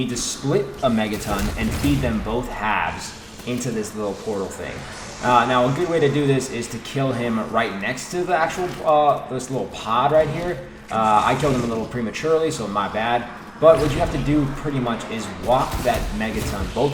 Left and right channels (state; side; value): identical; both; correlation 1.00